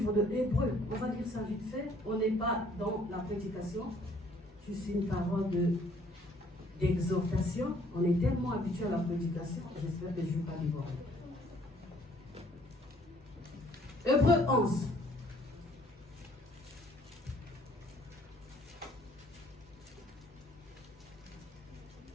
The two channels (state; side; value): normal; both; correlation 0.61